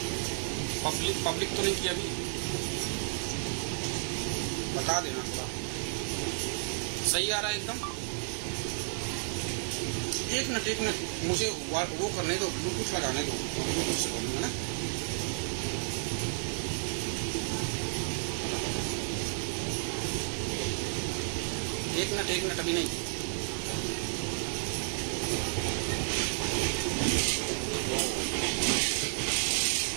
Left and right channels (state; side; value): silent; left; 56 dB below the other